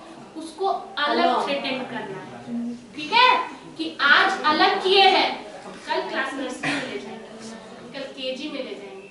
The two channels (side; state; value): both; identical; correlation 1.00